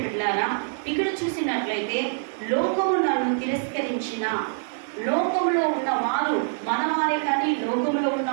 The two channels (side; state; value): left; silent; digital silence